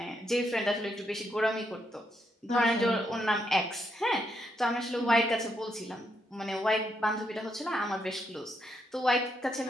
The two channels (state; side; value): normal; both; correlation 0.78